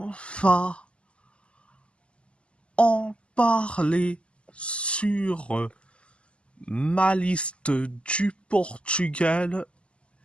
va en parler sur ma liste du Portugal.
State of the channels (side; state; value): right; late; 0.055 ms